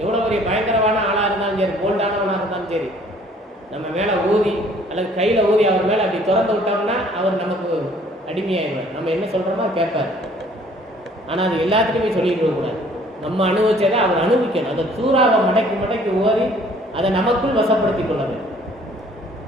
எவ்வளோ பெரிய பயங்கரமான ஆளாக இருந்தாலும் சரி, போல்டானவனாக இருந்தாலும் சரி, நம்ம மேலே ஊதி அல்லது கையில் ஊதி அவர் மேலே அப்படி திறந்து விட்டோம்னா அவர் நமக்கு அடிமையாயிடுவார். நம்ம என்ன சொல்கிறோமோ கேட்பார். ஆனால் அது எல்லாத்துக்குமே சொல்லிட்டு இருக்கக்கூடாது. நம்ம அனுபவிச்சதை அவர் அனுபவிக்கணும். அதை சூறாவை மடக்கி ஓதி அதை நமக்குள் வசப்படுத்தி கொள்ள வேண்டும்.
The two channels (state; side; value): normal; both; correlation 0.57